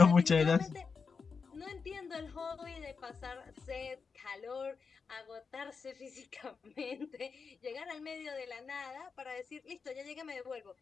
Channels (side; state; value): right; quieter; 5.3 dB